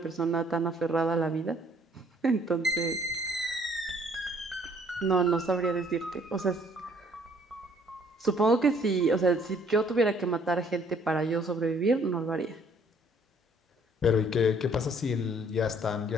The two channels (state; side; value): normal; both; correlation 0.61